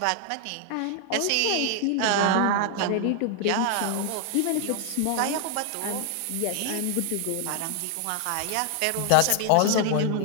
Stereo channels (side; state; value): both; different; correlation 0.00